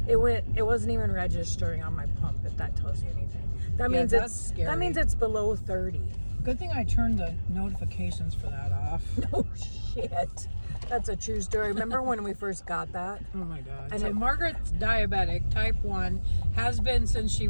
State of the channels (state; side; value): inverted; both; correlation -1.00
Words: It wasn't even registering on my pump, if that tells you anything. That Yeah, means that's it's scary. that means it's below 30. Good thing I turned the notifications for that off. Oh shit. That's a true story. Remember when we first got that? Oh my God. And So it- Margaret's diabetic, type 1, has been since she